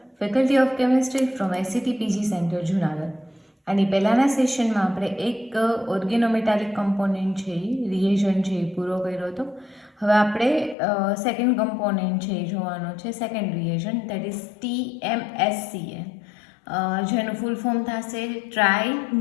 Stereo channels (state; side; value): drops out; right; at 10.8 s